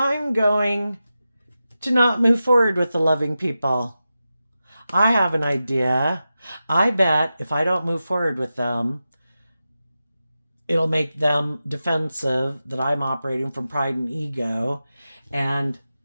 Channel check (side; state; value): both; inverted; correlation -0.92